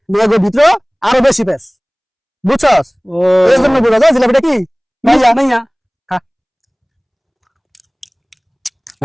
মেয়েগো ভিতরে আরো বেশি পেস বুঝছস ও এই জন্য বোঝা যায় জিলাপিটা কি মাইয়া মাইয়া। খা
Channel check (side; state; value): both; identical; correlation 1.00